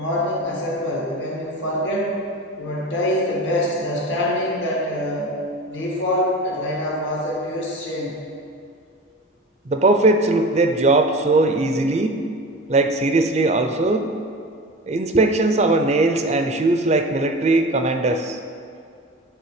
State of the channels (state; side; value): normal; both; correlation 0.32